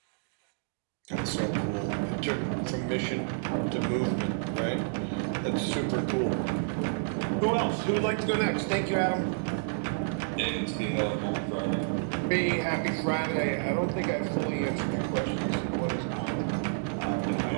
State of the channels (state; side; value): silent; left; digital silence